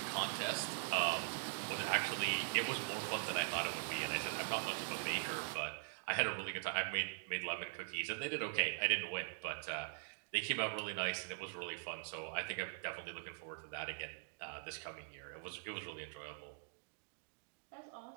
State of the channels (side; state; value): left; silent; digital silence